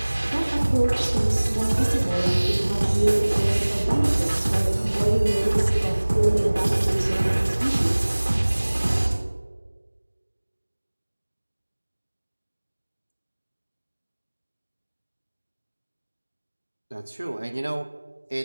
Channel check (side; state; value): both; inverted; correlation -1.00